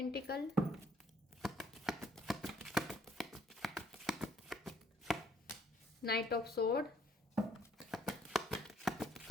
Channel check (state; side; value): normal; both; correlation 0.65